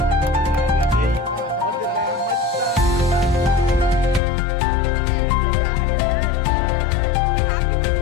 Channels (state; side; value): drops out; right; at 4.2 s